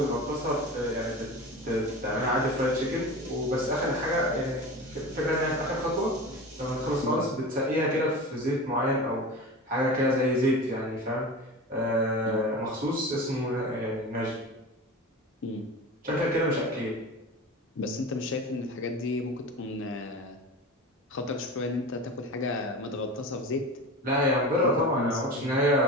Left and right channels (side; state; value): both; normal; correlation 0.31